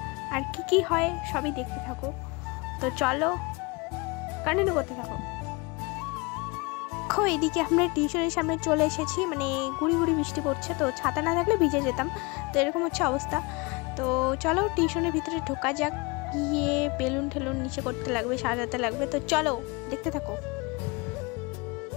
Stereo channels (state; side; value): quieter; right; 27.1 dB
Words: আর কি হয় সবই দেখতে থাকো। তো চলো কন্টিনিউ করতে থাকো। দেখো এদিকে আমরা টিউশনের সামনে চলে এসেছি, মানে গুড়ি গুড়ি বৃষ্টি পড়ছে, তো ছাতা না থাকলে ভিজে যেতাম। তো এরকম হচ্ছে অবস্থা। তো চলো টিউশনের ভিতরে ঢোকা যাক, গিয়ে বেলুন ঠেলুন নিচে করতে লাগবে, সাজাতে লাগবে। তো চলো দেখতে থাকো।